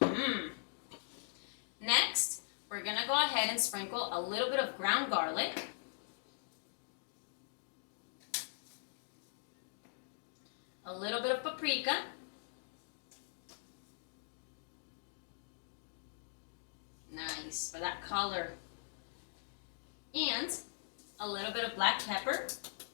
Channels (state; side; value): silent; right; digital silence